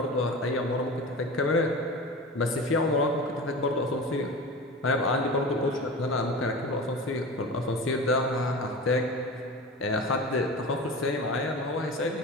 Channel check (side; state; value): both; normal; correlation 0.32